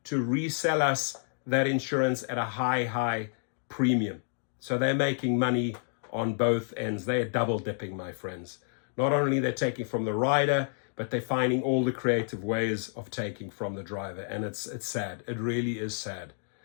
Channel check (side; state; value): right; silent; digital silence